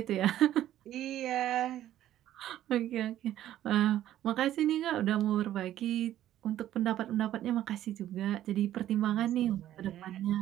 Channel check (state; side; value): quieter; left; 12.6 dB